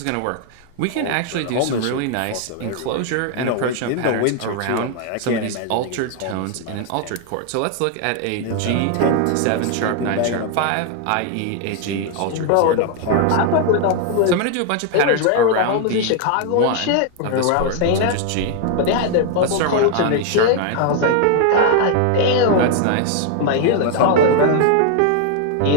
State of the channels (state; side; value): different; both; correlation 0.00